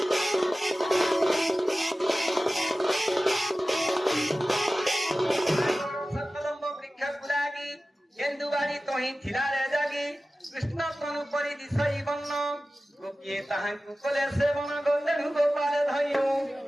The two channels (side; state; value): both; normal; correlation 0.96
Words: सकलम्ब वृक्ष गुलागी गेंदुबाड़ी तोही थिला रे जागी कृष्ण तनु परि दिसई बन्न गोपिए ताहांकु कोले सेवन गोंदेनु गोपाल धइयो